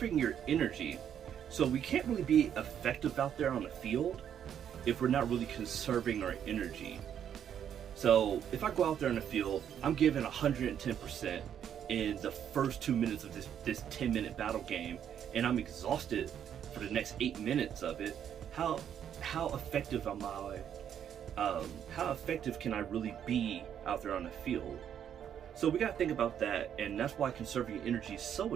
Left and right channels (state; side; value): quieter; left; 9.2 dB